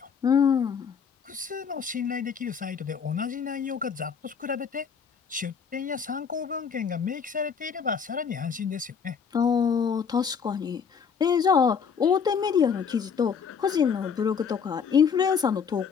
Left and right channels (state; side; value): quieter; right; 6.5 dB